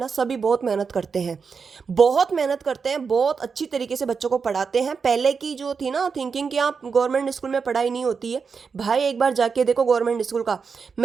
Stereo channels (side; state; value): left; quieter; 5.5 dB